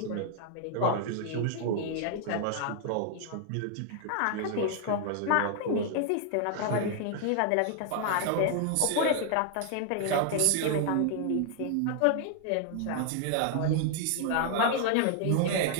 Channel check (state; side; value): different; both; correlation 0.00